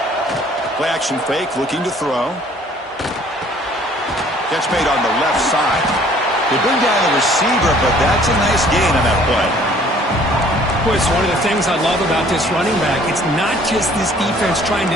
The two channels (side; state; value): both; normal; correlation 0.56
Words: Play action fake, looking to throw. Catch made on the left side. They bring down the receiver, but that's a nice gain on that play. It's one of the things I love about this running back. It's not just this defense trying to